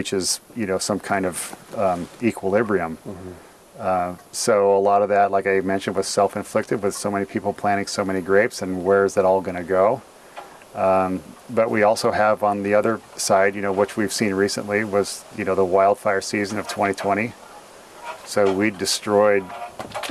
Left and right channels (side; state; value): both; identical; correlation 1.00